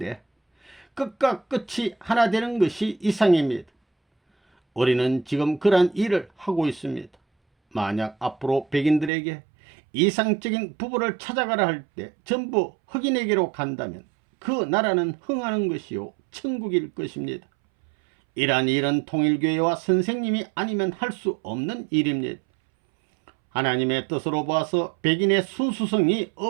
끝과 끝이 하나 되는 것이 이상입니다. 우리는 지금 그러한 일을 하고 있습니다. 만약 앞으로 백인들에게 이상적인 부부를 찾아가라 할 때 전부 흑인에게로 간다면 그 나라는 흥하는 것이요 천국일 것입니다. 이러한 일은 통일교회와 선생님이 아니면 할 수 없는 일입니다. 하나님의 뜻으로 봐서 백인의 순수성이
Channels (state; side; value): drops out; left; at 9.1 s